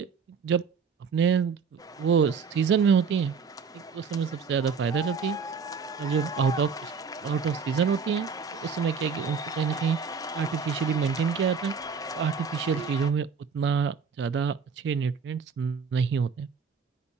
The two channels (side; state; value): left; quieter; 5.7 dB